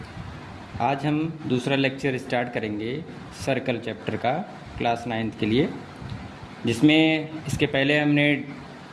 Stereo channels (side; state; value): both; identical; correlation 1.00